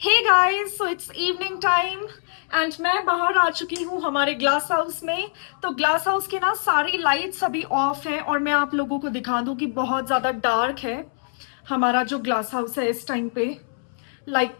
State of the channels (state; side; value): silent; right; 63 dB below the other